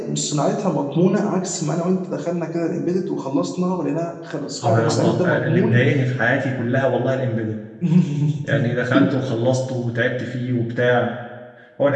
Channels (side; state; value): both; identical; correlation 1.00